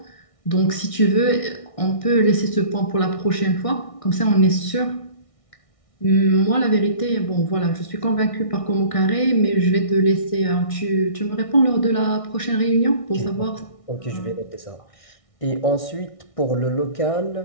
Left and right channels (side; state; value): right; late; 1.6 ms